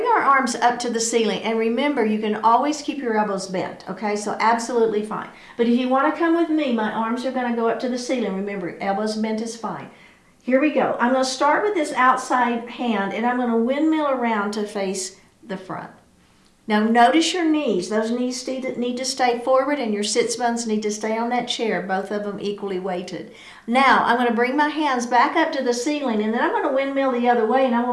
our arms up to the ceiling, and remember, you can always keep your elbows bent, okay? So absolutely fine. But if you want to come with me, my arms are going to go up to the ceiling. Remember, elbows bent is fine. Here we go. I'm going to start with this outside hand, and I'm going to windmill around to face the front. Now, notice your knees. Those knees need to stay forward, and your sits bones need to stay on that chair, both of them equally weighted. Now, I'm going to bring my hands back up to the ceiling, and then I'm going to windmill the other way, and I'm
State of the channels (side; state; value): both; identical; correlation 1.00